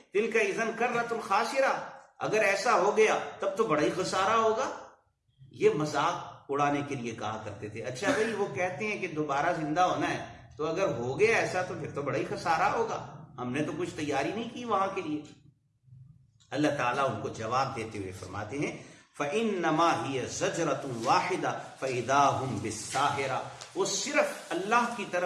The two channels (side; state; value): both; identical; correlation 1.00